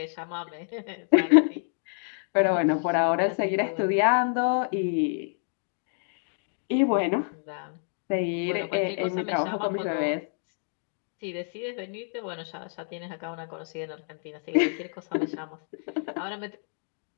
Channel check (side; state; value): right; silent; digital silence